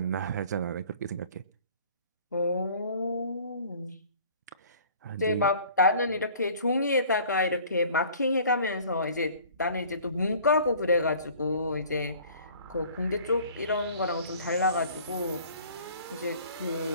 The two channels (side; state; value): both; inverted; correlation -0.50